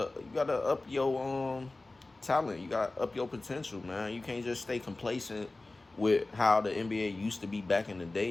your talent, you gotta up your potential, man. You can't just stay complacent with how the NBA used to be back in the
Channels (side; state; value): right; quieter; 3.1 dB